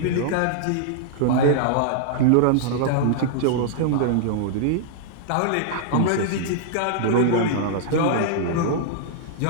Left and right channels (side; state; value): both; different; correlation -0.01